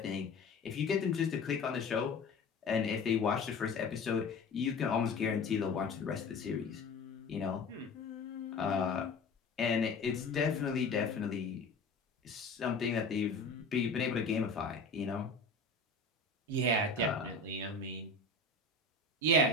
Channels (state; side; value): quieter; right; 3.3 dB